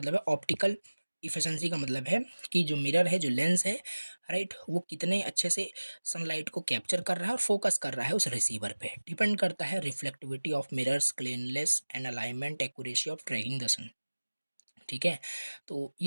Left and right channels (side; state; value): both; inverted; correlation -1.00